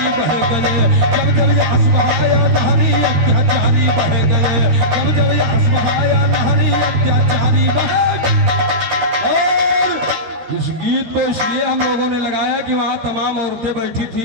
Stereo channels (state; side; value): late; left; 13 ms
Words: बह गए, जब जब यहस बहाया नहरी अत्याचारी बह गए, जब जब यहस बहाया नहरी अत्याचारी बहे। और इस गीत को इसलिए हम लोगों ने लगाया कि वहां तमाम औरतें बैठी